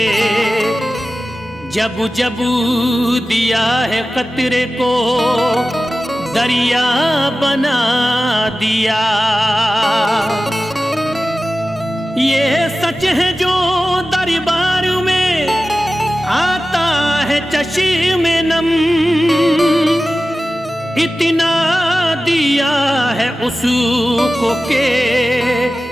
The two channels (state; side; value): normal; both; correlation 0.95